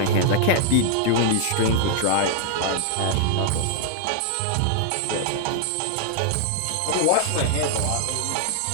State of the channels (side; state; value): both; different; correlation 0.00